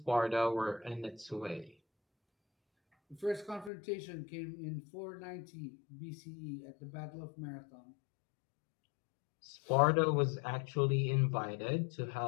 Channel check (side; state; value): right; drops out; at 3.7 s